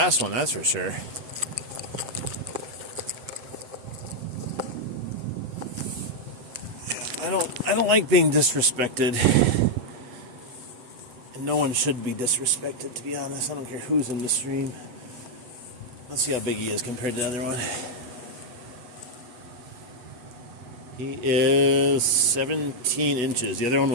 one, that's for sure. I don't like being disrespected. And no one should be disrespected, to be honest. I don't care who's in the stream. Let's see how big he is compared to the other one. He is 17 inches. The other one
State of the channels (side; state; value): left; late; 8.2 ms